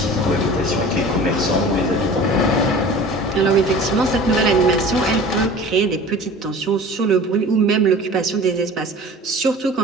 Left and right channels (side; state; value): both; normal; correlation 0.41